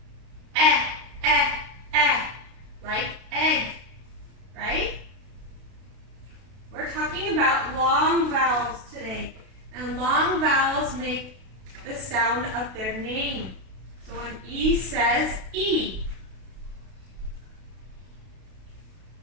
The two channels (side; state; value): left; late; 32 ms